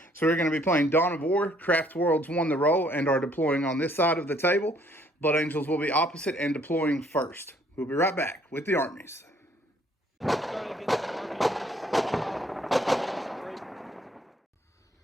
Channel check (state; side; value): normal; both; correlation 0.63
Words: So we're going to be playing Dawn of War. Craftworlds won the role and are deploying on this side of the table. Blood Angels will be opposite and deploying first. We'll be right back with the armies.